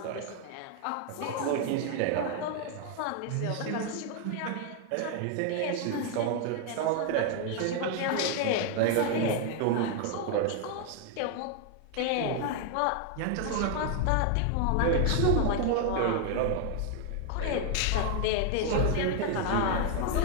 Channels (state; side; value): different; both; correlation 0.00